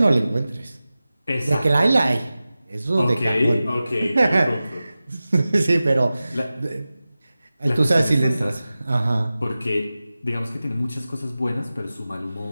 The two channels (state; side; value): inverted; both; correlation -0.95